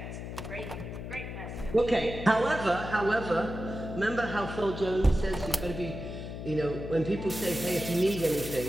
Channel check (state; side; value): noise; left; hum, 8 dB below the sound